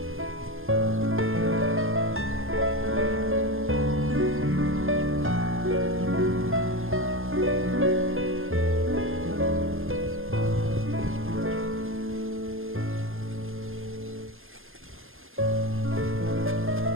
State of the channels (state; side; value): late; left; 0.59 ms